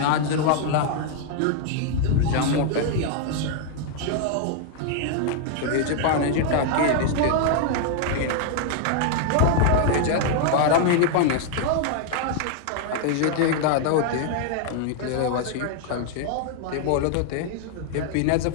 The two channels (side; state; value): both; different; correlation 0.00